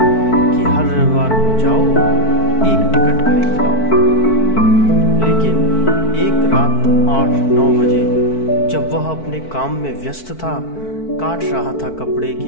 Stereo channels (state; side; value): late; right; 4.5 ms